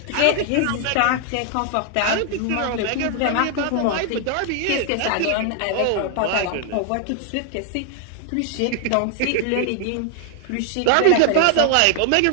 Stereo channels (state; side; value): different; both; correlation 0.00